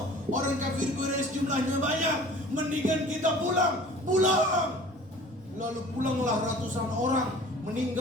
Orang kafir Quraisy jumlahnya banyak, mendingan kita pulang. Lalu pulanglah ratusan orang,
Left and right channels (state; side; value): normal; both; correlation 0.46